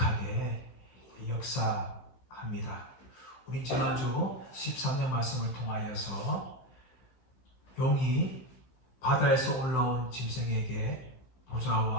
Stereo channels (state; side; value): late; right; 16 ms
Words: 역사합니다. 우린 지난주 13장 말씀을 통하여서 용이 바다에서 올라온 짐승에게